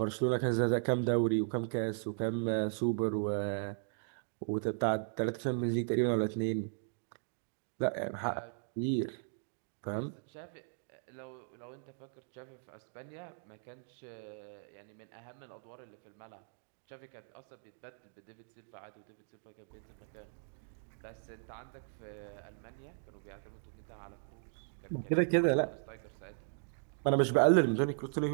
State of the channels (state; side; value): silent; left; digital silence